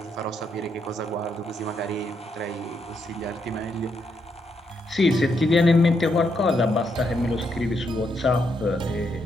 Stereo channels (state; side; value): normal; both; correlation 0.78